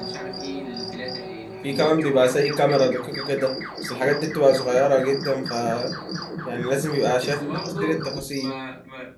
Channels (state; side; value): identical; both; correlation 1.00